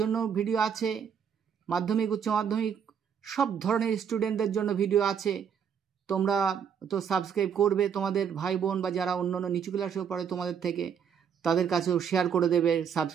ভিডিও আছে, মাধ্যমিক উচ্চ মাধ্যমিক সব ধরনের স্টুডেন্টদের জন্য ভিডিও আছে। তোমরা তো সাবস্ক্রাইব করবে, তোমাদের ভাই বোন বা যারা অন্যান্য নিচু ক্লাসেও পড়ে তোমাদের থেকে, তাদের কাছেও শেয়ার করে দেবে,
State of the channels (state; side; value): quieter; left; 7.6 dB